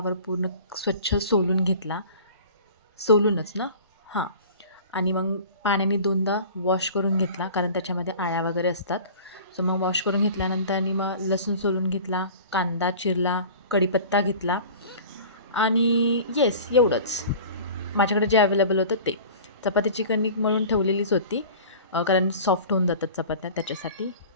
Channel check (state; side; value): inverted; both; correlation -0.41